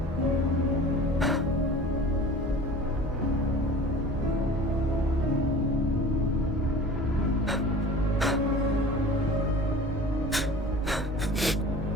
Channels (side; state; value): both; normal; correlation 0.40